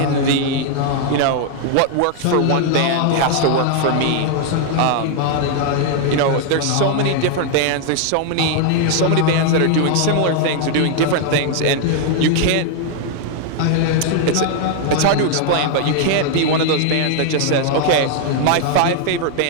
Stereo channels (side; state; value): both; different; correlation 0.00